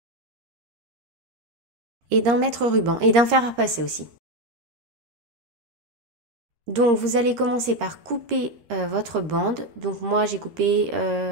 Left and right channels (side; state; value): left; late; 13 ms